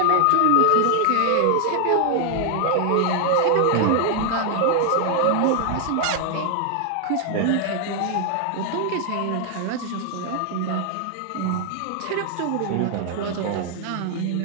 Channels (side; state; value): both; different; correlation 0.00